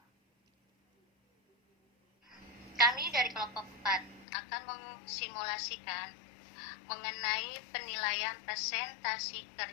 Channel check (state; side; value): drops out; right; at 4.2 s